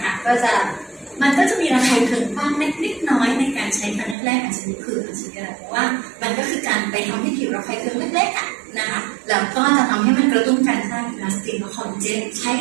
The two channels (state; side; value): drops out; left; at 4.2 s